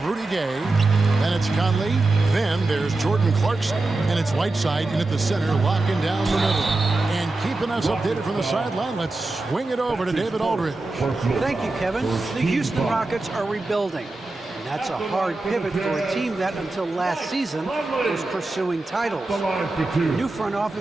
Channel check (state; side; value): quieter; left; 3.1 dB